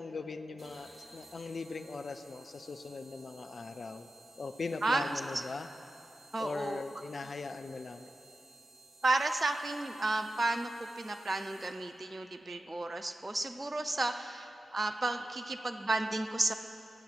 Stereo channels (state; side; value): normal; both; correlation 0.92